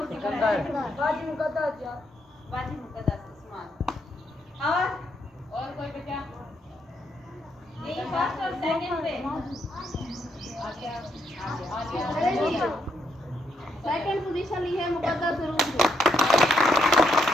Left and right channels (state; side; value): normal; both; correlation 0.77